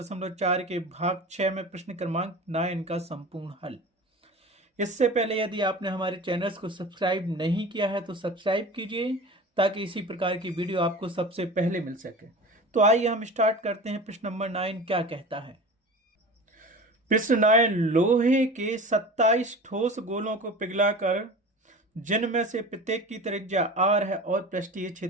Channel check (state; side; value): normal; both; correlation 0.35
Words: के भाग 6 में प्रश्न क्रमांक 9 का संपूर्ण हल। इससे पहले यदि आपने हमारे चैनल्स को सब्सक्राइब नहीं किया है तो सब्सक्राइब कीजिए ताकि इसी प्रकार की वीडियो आपको सबसे पहले मिल सके। तो आइए हम स्टार्ट करते हैं। प्रश्न नंबर 9 क्या कहता है। प्रश्न 9, लोहे के 27 ठोस गोलों को पिघलाकर जिनमें से प्रत्येक की त्रिज्या r है और पृष्ठीय